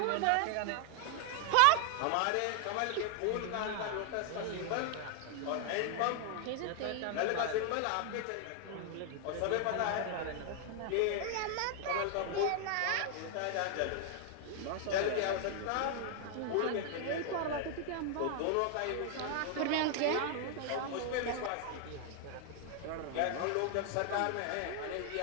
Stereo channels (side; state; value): both; different; correlation 0.00